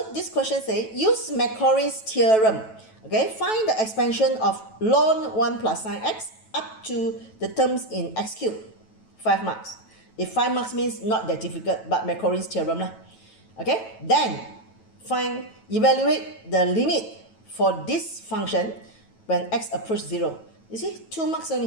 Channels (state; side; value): late; right; 9.1 ms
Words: this question says, use Maclaurin's theorem. Okay, find the expansion of ln 1 plus sine x up to the terms in x cubed. 5 marks. If 5 marks means not that difficult, but Maclaurin's theorem lah. Okay, then evaluate the limit for this function when x approach 0. You see, 2 marks